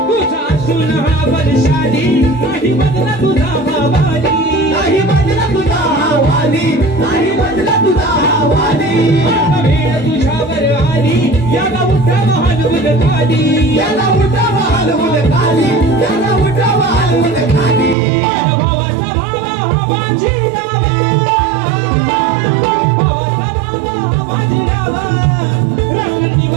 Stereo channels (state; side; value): drops out; left; at 17.9 s